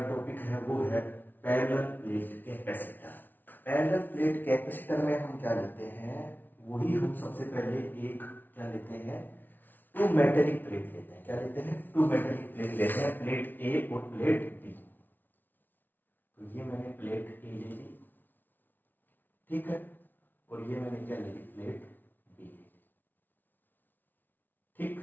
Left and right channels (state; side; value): late; right; 0.088 ms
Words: टॉपिक है वो है parallel plate capacitor. Parallel plate capacitor में हम क्या लेते हैं, वही हम सबसे पहले एक क्या लेते हैं, टू मेटेलिक प्लेट लेते हैं। क्या लेते हैं? टू मेटेलिक प्लेट लेते हैं, प्लेट ए और प्लेट बी। तो ये मैंने प्लेट ए ले ली, ठीक है, और ये मैंने क्या ले ली, प्लेट बी,